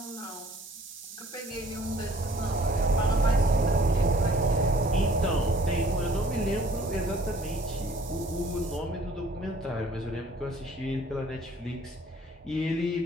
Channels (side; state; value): both; normal; correlation 0.56